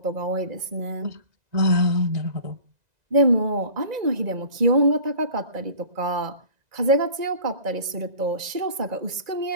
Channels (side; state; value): left; late; 2.0 ms